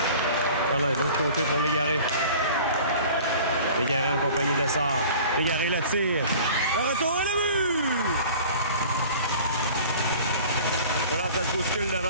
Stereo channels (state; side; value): inverted; both; correlation -0.44